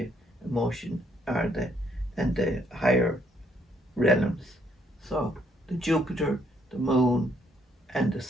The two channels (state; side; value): normal; both; correlation 0.70